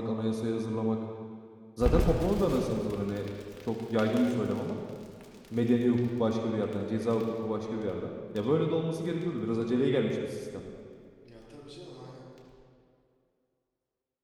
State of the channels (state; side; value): identical; both; correlation 1.00